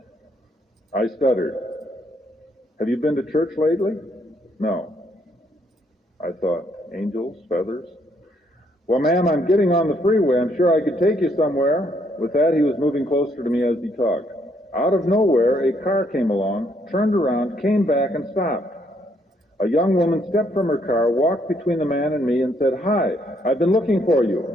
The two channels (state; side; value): normal; both; correlation 0.71